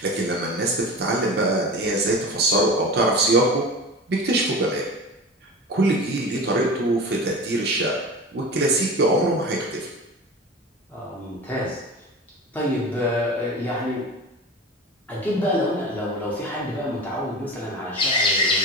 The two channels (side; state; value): both; normal; correlation 0.32